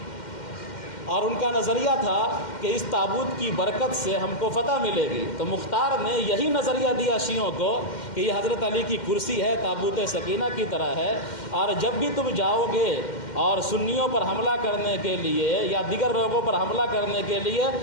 اور ان کا نظریہ تھا کہ اس تابوت کی برکت سے ہم کو فتح ملے گی۔ تو مختار نے یہی نظریہ دیا شیعوں کو کہ یہ حضرت علی کی کرسی ہے، تابوت سکینہ کی طرح ہے، اور جب بھی تم جاؤ گے اور سنیوں پر حملہ کرنے کے لیے یا دیگر لوگوں پر حملہ کرنے کے لیے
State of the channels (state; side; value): late; right; 2.1 ms